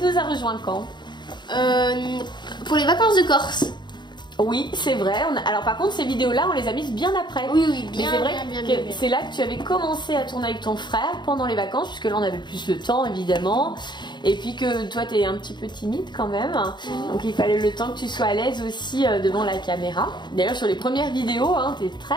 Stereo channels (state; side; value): late; right; 0.22 ms